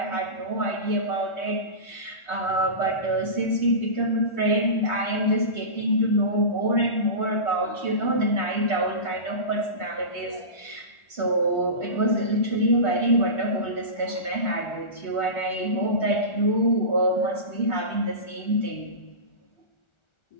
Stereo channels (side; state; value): right; late; 1.4 ms